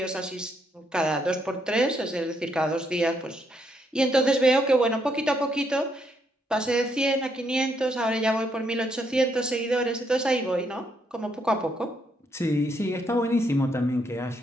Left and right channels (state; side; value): normal; both; correlation 0.75